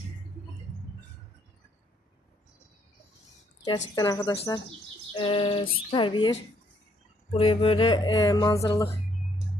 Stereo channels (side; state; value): both; normal; correlation 0.69